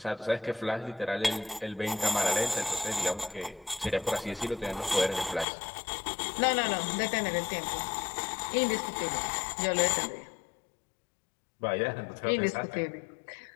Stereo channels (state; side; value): drops out; right; at 5.5 s